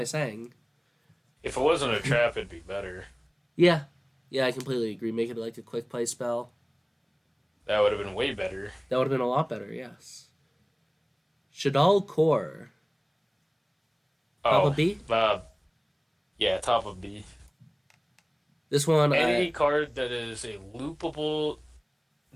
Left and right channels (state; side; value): identical; both; correlation 1.00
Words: saying? If it wasn't a trap, it'd be better. Yeah, yeah, I completely agree. Make it like a quick play spell. That would have been way better. That would have been a lot better. Yes. Shaddoll Core. Top Oh, of B. yeah, top of B. This one, Any card that is a loopable,